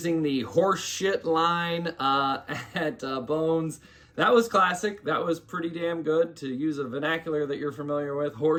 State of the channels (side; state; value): both; identical; correlation 1.00